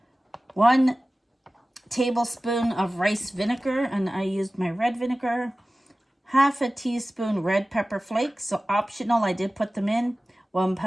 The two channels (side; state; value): both; normal; correlation 0.97